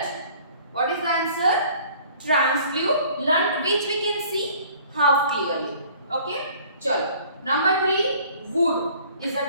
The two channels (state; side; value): inverted; both; correlation -0.53